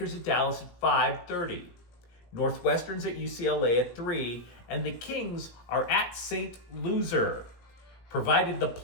at Dallas at 5:30. Northwestern's at UCLA at 3, and the Kings are at St. Loser. Provided the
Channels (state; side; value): late; right; 17 ms